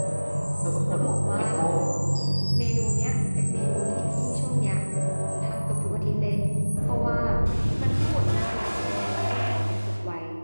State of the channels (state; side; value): inverted; both; correlation -1.00